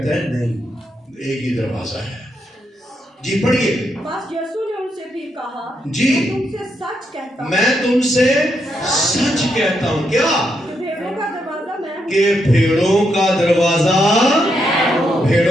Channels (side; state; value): both; normal; correlation 0.80